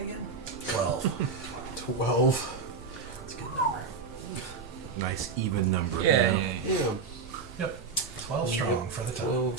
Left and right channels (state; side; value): quieter; left; 4.9 dB